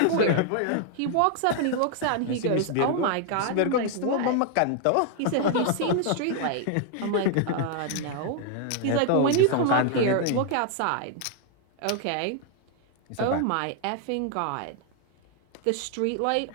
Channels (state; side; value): different; both; correlation 0.00